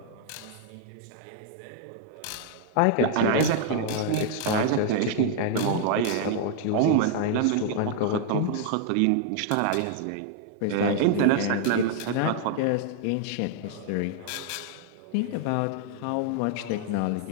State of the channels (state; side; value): different; both; correlation 0.00